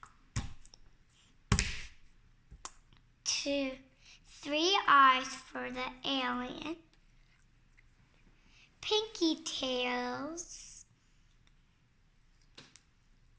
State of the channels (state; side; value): identical; both; correlation 1.00